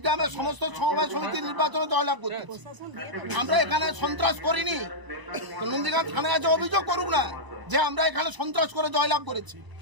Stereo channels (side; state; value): left; late; 1.0 ms